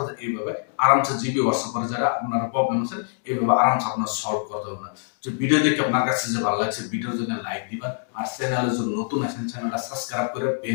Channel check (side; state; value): right; silent; digital silence